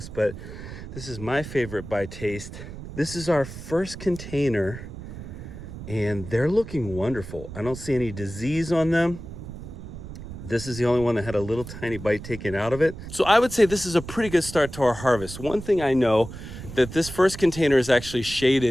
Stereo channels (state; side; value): noise; right; rumble, 11 dB below the sound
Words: but this is my favorite by taste. This is our first container and they're looking wonderful. I don't see any disease on them. This is the only one that had a little tiny bite taken out of it. So I would say this is a pretty good start to our harvest. One thing I know, that this first container is actually